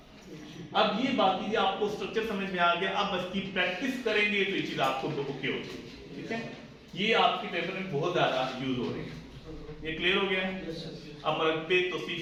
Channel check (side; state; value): both; identical; correlation 1.00